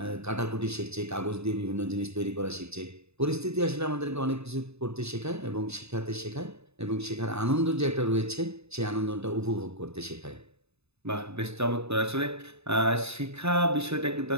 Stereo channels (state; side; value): late; left; 0.80 ms